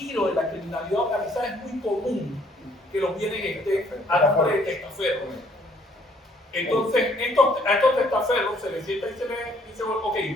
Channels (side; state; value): both; normal; correlation 0.63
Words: de la criminalidad organizada es muy común que los bienes estén a nombre de testaferros. Entonces, a estos testaferros se les sienta y se les dice, ok,